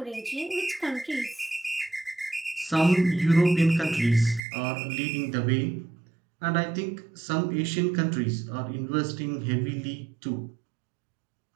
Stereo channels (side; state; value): left; drops out; at 4.4 s